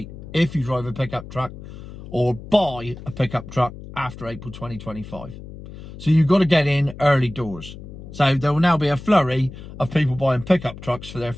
if you drive a pickup truck or buy a pickup truck after April 2025. So you've got to get in early doors. So there will now be a flurry of people buying pickup trucks for their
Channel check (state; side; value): noise; left; hum, 14 dB below the sound